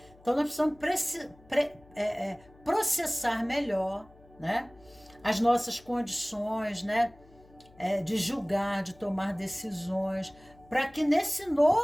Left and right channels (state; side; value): noise; left; hum, 26 dB below the sound